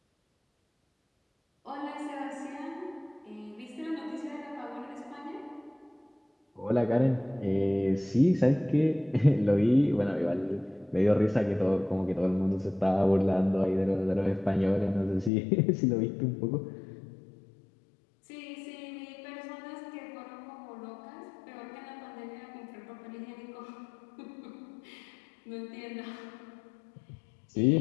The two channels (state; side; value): drops out; right; at 15.3 s